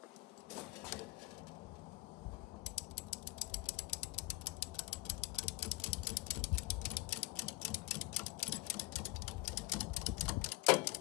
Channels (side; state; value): right; quieter; 21.5 dB